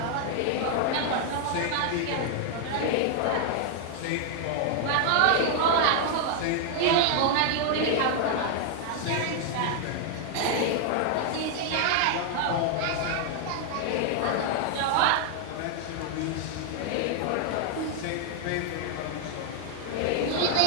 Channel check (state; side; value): different; both; correlation 0.00